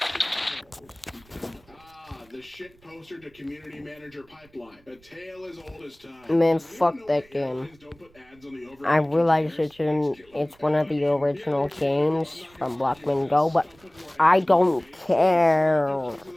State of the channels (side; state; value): right; noise; rumble, 29 dB below the sound